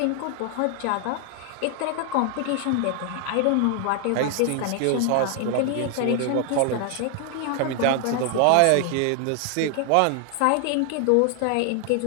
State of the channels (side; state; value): both; different; correlation 0.00